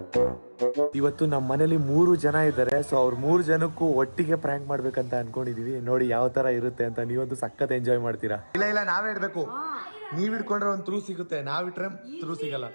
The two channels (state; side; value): inverted; both; correlation -1.00